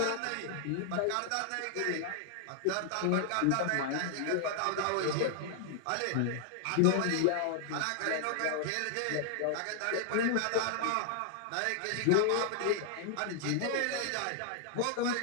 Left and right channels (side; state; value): both; different; correlation 0.00